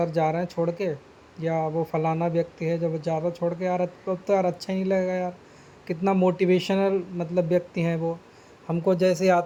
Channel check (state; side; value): identical; both; correlation 1.00